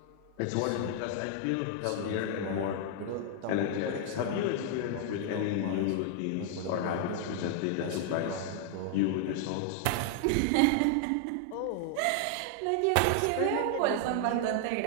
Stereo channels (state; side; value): different; both; correlation 0.00